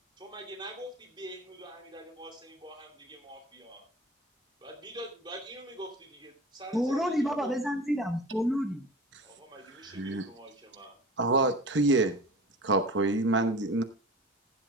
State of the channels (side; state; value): both; normal; correlation 0.37